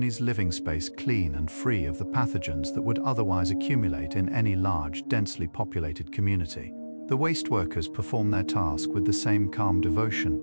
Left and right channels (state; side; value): inverted; both; correlation -1.00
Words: living space clean and free of the pathogens that would otherwise accumulate in any large, densely populated community. The waste workers perform their task with the same calm